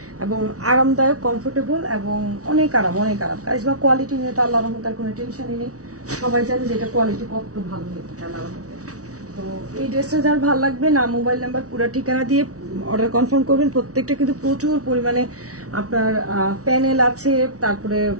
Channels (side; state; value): left; late; 0.66 ms